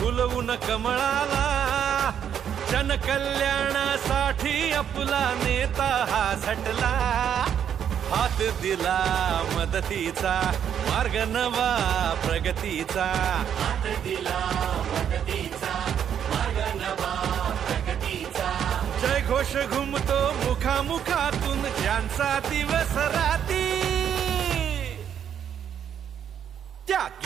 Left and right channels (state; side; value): quieter; left; 8.9 dB